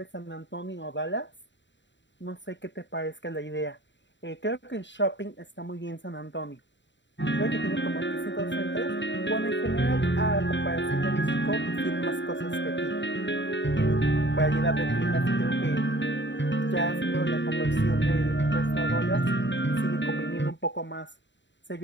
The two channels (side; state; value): right; late; 0.53 ms